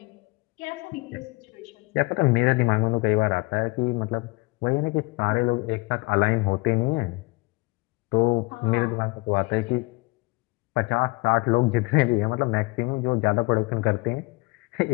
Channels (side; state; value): right; quieter; 25.6 dB